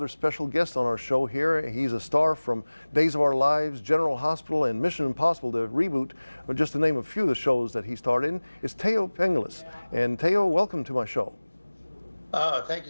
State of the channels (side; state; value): both; inverted; correlation -1.00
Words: special guest on our show here. He's a star from Days of Our Lives, General Hospital, and Mission Impossible, the reboot, just to name a few of the shows that he starred in. It's Thaao Penghlis. And Thaao, welcome to my show. Thank you,